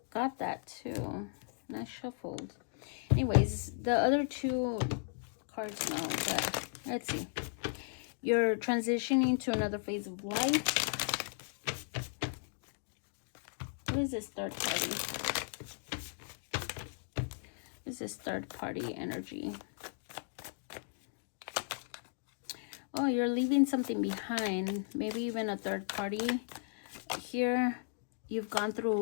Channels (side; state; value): right; silent; digital silence